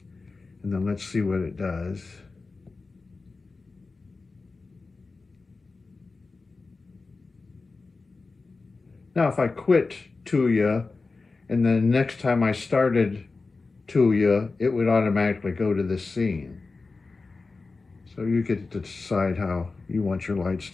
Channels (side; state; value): right; quieter; 3.9 dB